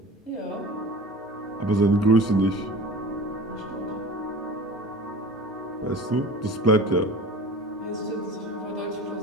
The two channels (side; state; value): both; normal; correlation 0.38